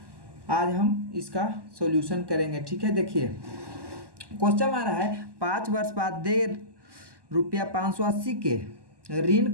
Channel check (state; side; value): late; left; 1.1 ms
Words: आज हम इसका सॉल्यूशन करेंगे। ठीक है, देखिए क्वेश्चन आ रहा है 5 वर्ष बाद दे रुपया 580 के